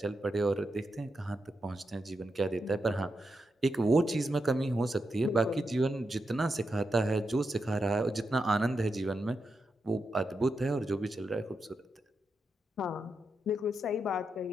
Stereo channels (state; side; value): normal; both; correlation 0.86